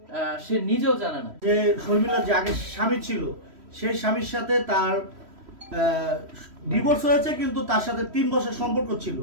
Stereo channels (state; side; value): late; left; 3.1 ms